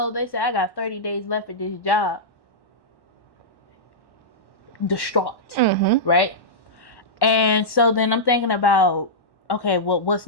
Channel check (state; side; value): late; right; 1.1 ms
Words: they say I got 30 days left at this job. Distraught, right? And so then I'm thinking about, okay, well, what's